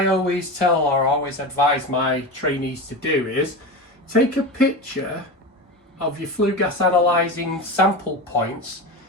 always tell or always advise my trainees to do is take a picture of your flue gas analysing sample points,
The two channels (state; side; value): normal; both; correlation 0.24